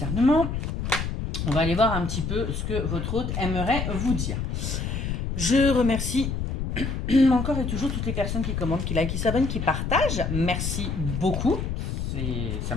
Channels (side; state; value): left; noise; rumble, 2 dB below the sound